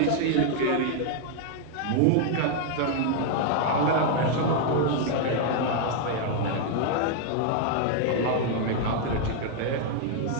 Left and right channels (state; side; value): different; both; correlation 0.00